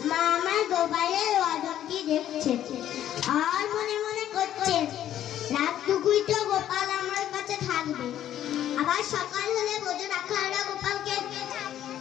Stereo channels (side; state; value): right; quieter; 11.4 dB